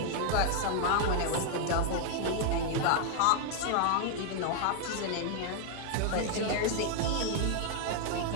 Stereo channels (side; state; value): both; different; correlation 0.00